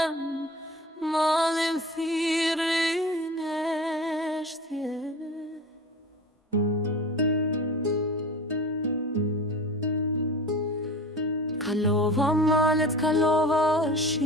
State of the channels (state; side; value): normal; both; correlation 0.34